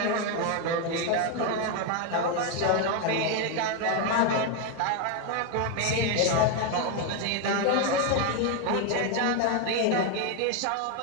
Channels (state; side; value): different; both; correlation 0.01